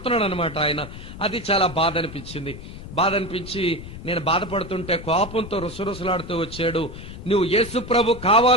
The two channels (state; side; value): noise; left; rumble, 12 dB below the sound